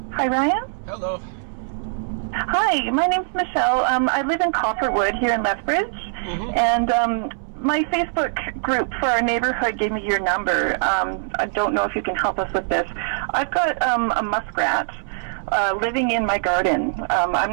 Hi, Ryan. Hello. Hi, my name's Michelle. I live in Copperwood here in Lethbridge, and my Facebook group for our neighborhood gave me your number. I don't know if you can help us with this. I've got a muskrat living in my garden. I'm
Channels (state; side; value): silent; left; 64 dB below the other